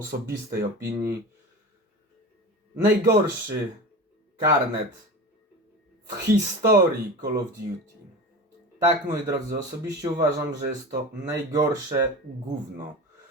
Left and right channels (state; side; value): normal; both; correlation 0.31